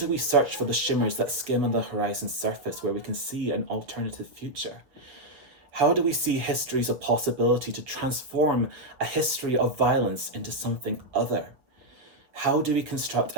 we search for the shimmers that skim on the horizon surface where we can see an alternative future? How do we see histories of possibility to transform a history of violence into something other? How do we construct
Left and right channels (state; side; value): late; left; 7.5 ms